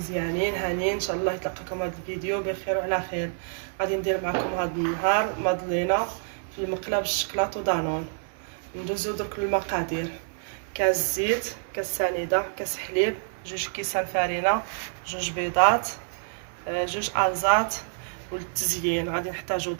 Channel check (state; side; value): silent; left; 60 dB below the other